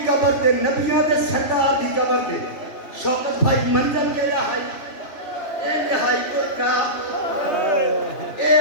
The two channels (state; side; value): late; right; 2.9 ms